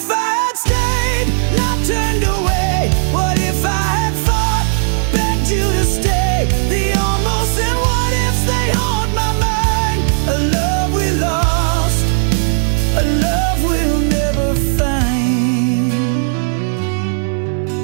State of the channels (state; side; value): silent; left; digital silence